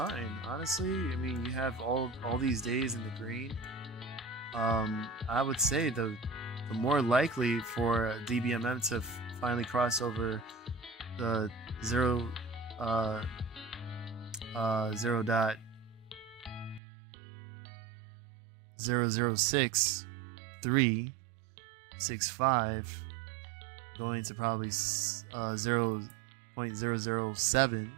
honestly. I mean, you have all these days in the green. I would say the more likely for Dbmm to finally cross over the 0.00665 going to probably 0.007,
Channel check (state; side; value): drops out; left; at 16.8 s